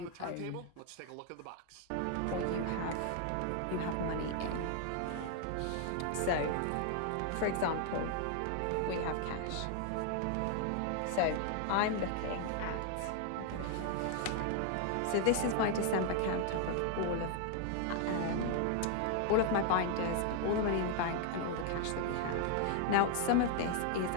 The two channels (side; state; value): both; different; correlation 0.00